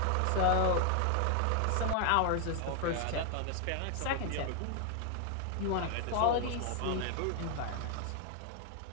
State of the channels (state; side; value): different; both; correlation 0.00